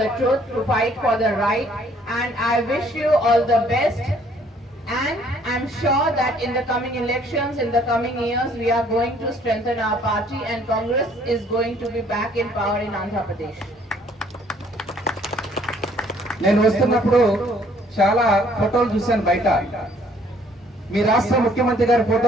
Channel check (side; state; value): both; normal; correlation 0.61